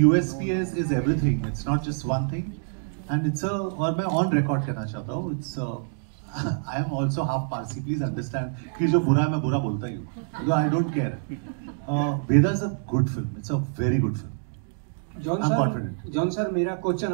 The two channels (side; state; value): left; silent; digital silence